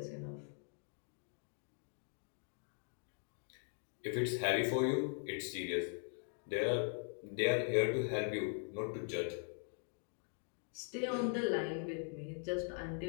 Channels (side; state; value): right; silent; 50 dB below the other